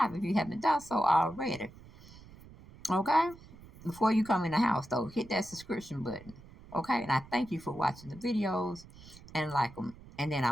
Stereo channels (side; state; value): right; noise; rumble, 20 dB below the sound